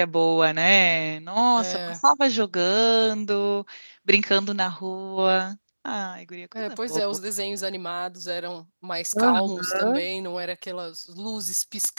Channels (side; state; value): both; inverted; correlation -1.00